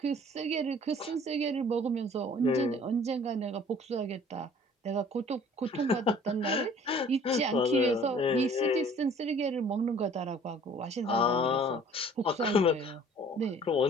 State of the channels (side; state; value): both; normal; correlation 0.52